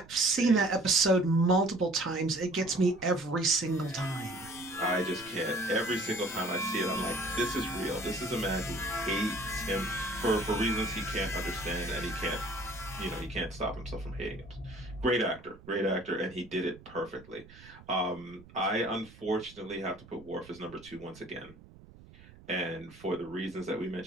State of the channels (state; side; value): noise; right; rumble, 21 dB below the sound